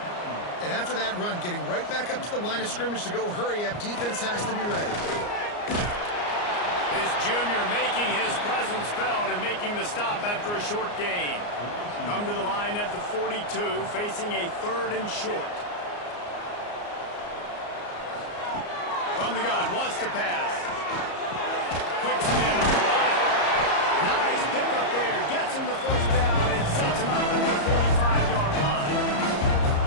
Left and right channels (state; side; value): late; right; 34 ms